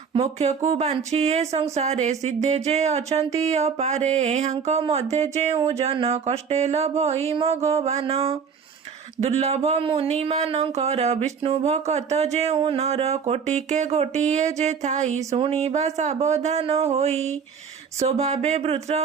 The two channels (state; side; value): quieter; left; 6.4 dB